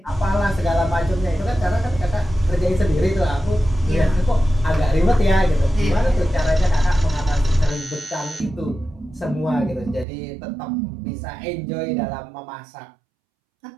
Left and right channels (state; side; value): drops out; left; at 10.1 s